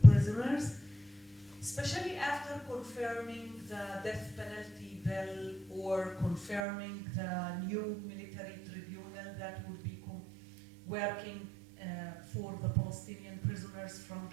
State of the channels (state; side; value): drops out; left; at 6.6 s